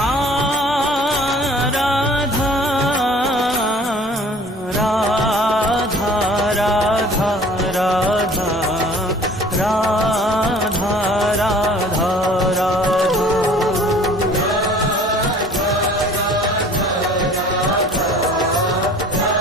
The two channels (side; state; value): both; normal; correlation 0.49